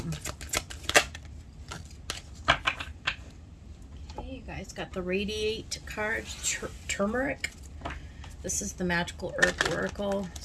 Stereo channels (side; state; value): both; identical; correlation 1.00